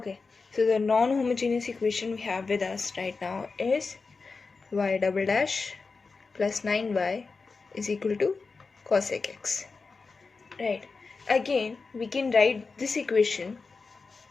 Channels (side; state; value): right; quieter; 4.4 dB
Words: so the non-homogeneous equation we have with us right now is y double dash plus 9y is equal to cosec x. Right, again we can write this equation